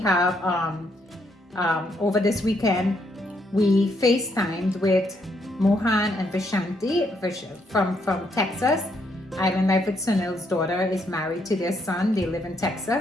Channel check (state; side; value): normal; both; correlation 0.74